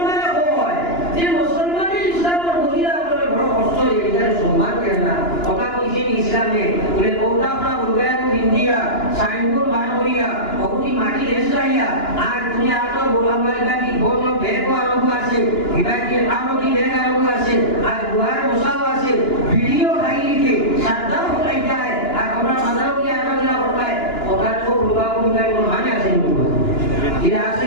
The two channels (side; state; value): right; late; 2.9 ms